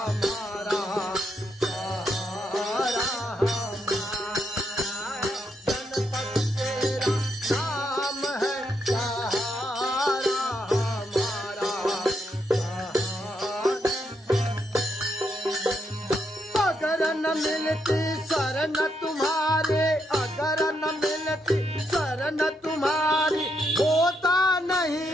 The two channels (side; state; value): both; normal; correlation 0.79